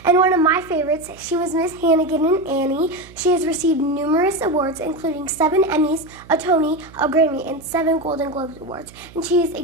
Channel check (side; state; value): right; noise; hum, 22 dB below the sound